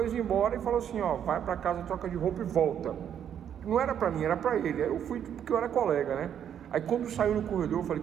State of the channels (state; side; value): quieter; left; 9.2 dB